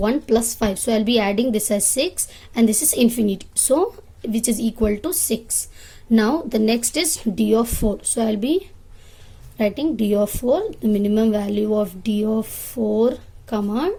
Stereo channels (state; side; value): identical; both; correlation 1.00